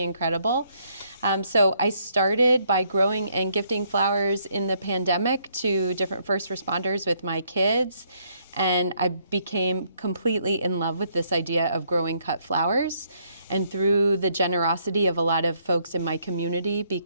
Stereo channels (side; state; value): both; inverted; correlation -0.71